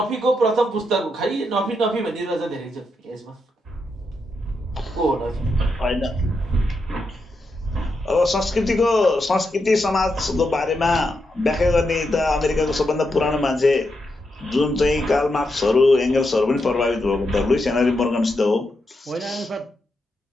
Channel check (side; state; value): both; normal; correlation 0.84